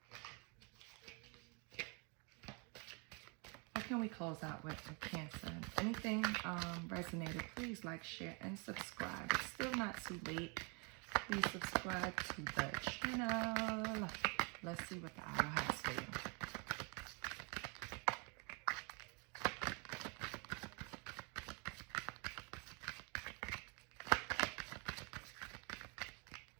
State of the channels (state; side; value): quieter; left; 33.5 dB